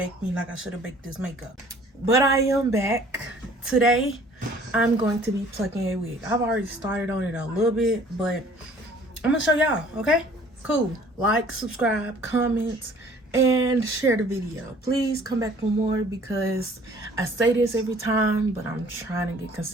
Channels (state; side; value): normal; both; correlation 0.54